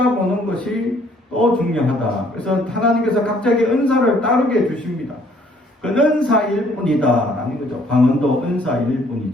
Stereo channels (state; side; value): normal; both; correlation 0.62